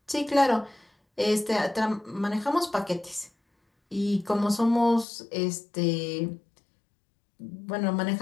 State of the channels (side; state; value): right; drops out; at 5.1 s